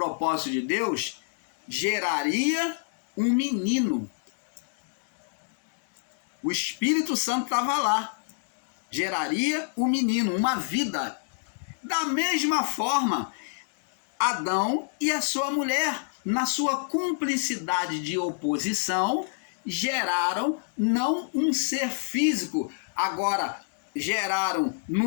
de Deus, geraria um menino. O Espírito Santo estava lá. Geraria um menino, uma vida. Da mesma forma, Adão e a sua mulher, na sua cumplicidade de oposição, geraram não um ser físico. Agora, geraram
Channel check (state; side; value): silent; right; digital silence